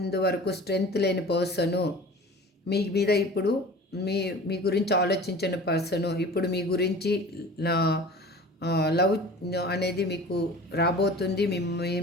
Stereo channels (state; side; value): normal; both; correlation 0.40